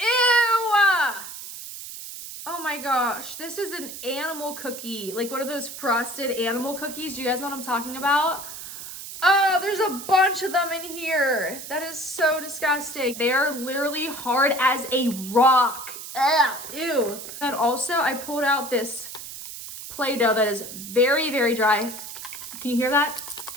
Oh my gosh, this is an animal cookie. Like one of those frosted animal cookies. Do you guys know what I'm talking about? Oh, there's a bunch of them in here. That is so disgusting. They are literally hard as a rock. Ugh, ew. And also, I pulled out this Play-Doh that is very, very dry. Can you hear that?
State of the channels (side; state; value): right; noise; hiss, 11 dB below the sound